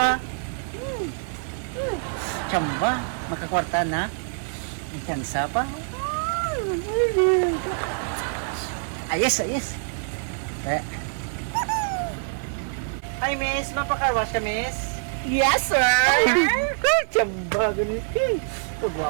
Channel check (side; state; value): left; silent; 58 dB below the other